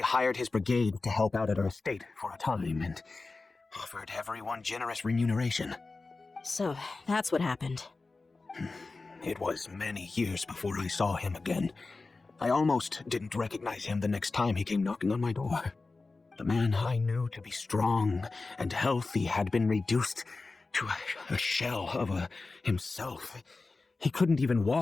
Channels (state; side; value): quieter; right; 3.7 dB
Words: hired his brigade to help out at our estate for a time and offered everyone generous remuneration. So, that's what happened. It was many years before I saw him again. I almost didn't recognize him the next time he came knocking on my door. The man I knew to be strong and healthy had been reduced to a shell of himself. He couldn't even